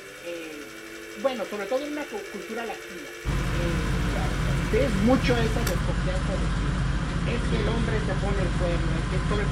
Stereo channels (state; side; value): identical; both; correlation 1.00